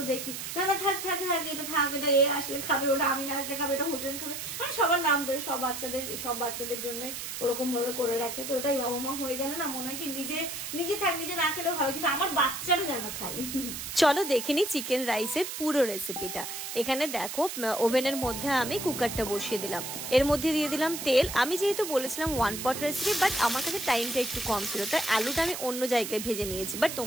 দেখি না না থাক থাক থাক, এটা থাক, এটা এ আসলে খাবে, ওটা আমি না আসলে খাবে, এটা হোসেন খাবে, মানে সবার নাম ধরে সব বাচ্চাদের জন্যই ওরকম ভাবে করে রাখে। তো ওটাই বাবা মা হয়ে গেলে না মনে হয় কি নিজে থাক, নিজে না খেলেও হবে, কিন্তু আমার বাচ্চারা যেন খাই। চলো দেখে নি চিকেন রাইসের পুরো রেসিপিটা। এখানে দেখো ওভেনের মধ্যে আমি কুকারটা বসিয়ে দিলাম, এর মধ্যে দিয়ে দিলাম তেল। আমি যেহেতু বলেছিলাম ওয়ান পট রেসিপি, বাট আমার কাছে টাইমটা একটু কম ছিল, তাই আলুটা আমি অন্য জায়গায় ভেজে নিয়েছি, বাট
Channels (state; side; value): noise; right; hiss, 6 dB below the sound